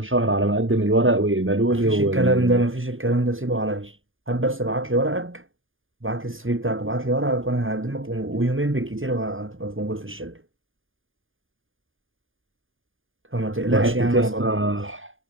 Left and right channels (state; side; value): late; left; 0.59 ms